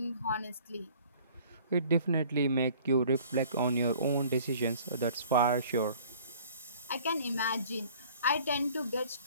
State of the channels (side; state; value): both; inverted; correlation -0.51